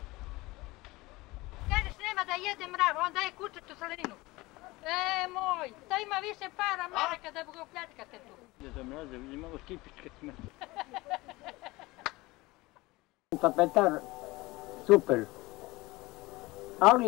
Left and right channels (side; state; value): right; quieter; 21.2 dB